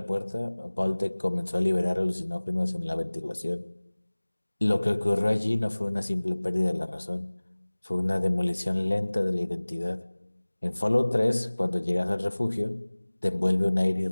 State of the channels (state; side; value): inverted; both; correlation -1.00